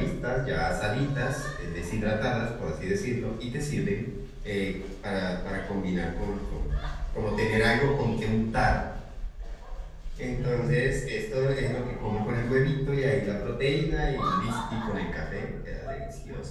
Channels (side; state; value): both; identical; correlation 1.00